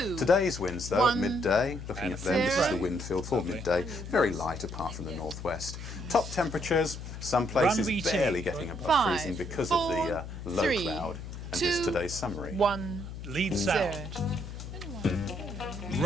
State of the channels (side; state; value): left; noise; hum, 9 dB below the sound